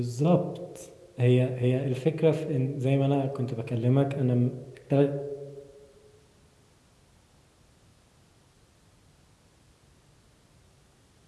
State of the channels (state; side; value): identical; both; correlation 1.00